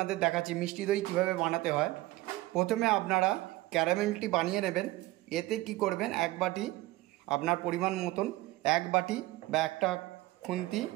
দেখাচ্ছি মিষ্টি দই কীভাবে বানাতে হয়। প্রথমে আপনারা ক্যারামেলটি বানিয়ে নেবেন। এতে কি করবেন, এক বাটি আপনার পরিমাণ মতন এক বাটি বা একটা খুন্তি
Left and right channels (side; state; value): left; quieter; 18.5 dB